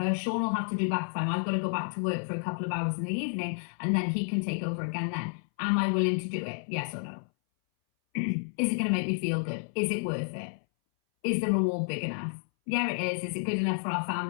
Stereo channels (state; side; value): silent; right; 58 dB below the other